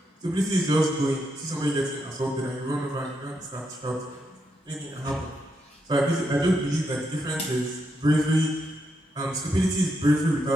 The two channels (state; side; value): normal; both; correlation 0.81